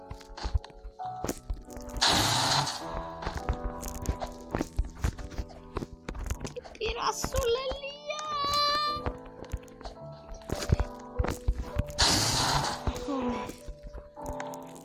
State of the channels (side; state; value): both; identical; correlation 1.00